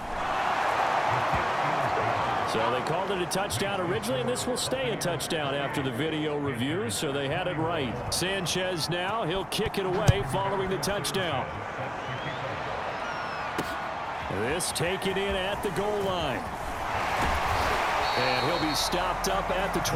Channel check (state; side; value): identical; both; correlation 1.00